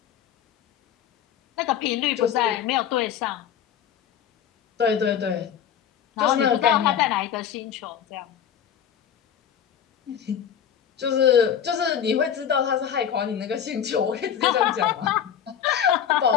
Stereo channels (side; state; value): right; quieter; 8.9 dB